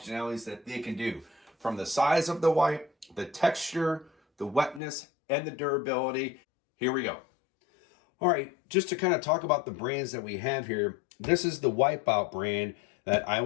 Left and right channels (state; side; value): drops out; right; at 4.8 s